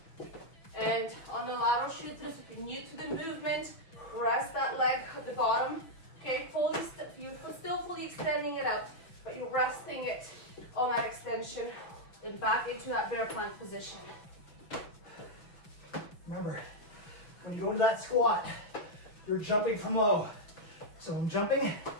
And on the lateral shoot throughs, if you're new to the movement, rest that leg at the bottom, okay? You're still fully extending it out, but you're resting it on that extension and back into that bear plank position. Remember, when you go into that squat, you're jumping from low. So I'm jumping,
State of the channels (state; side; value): late; right; 5.9 ms